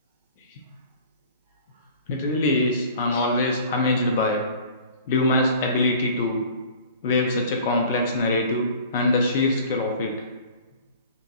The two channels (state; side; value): inverted; both; correlation -0.46